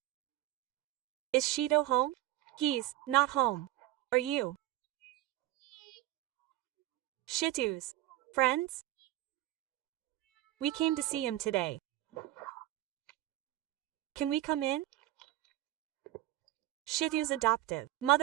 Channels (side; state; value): left; quieter; 15.5 dB